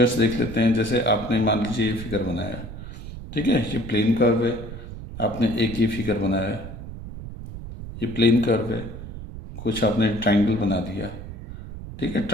देख लेते हैं। जैसे आपने मान लीजिए ये फिगर बनाया, ठीक है, ये प्लेन कर्व है। आपने एक ये फिगर बनाया, ये प्लेन कर्व है। कुछ आपने ट्रायंगल बना दिया। ठीक है,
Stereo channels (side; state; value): right; noise; rumble, 11 dB below the sound